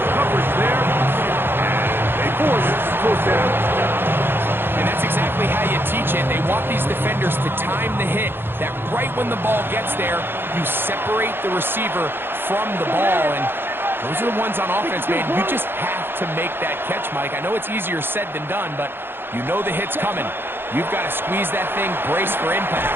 coverage there, and they force 4th down. And that's exactly how you teach it. They want these defenders to time the hit, that right when the ball gets there, you separate the receiver from the ball. And those are the ones on offense, man. You just have to make that catch, Mike. I know it's easier said than done, but you know the hit's coming. You've got to squeeze that thing, brace for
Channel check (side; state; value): left; late; 0.10 ms